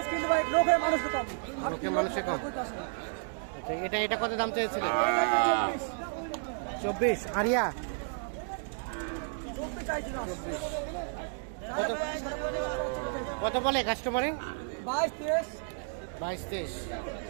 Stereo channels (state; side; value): silent; left; digital silence